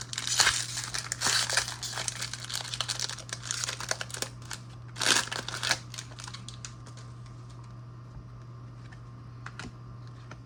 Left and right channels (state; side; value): identical; both; correlation 1.00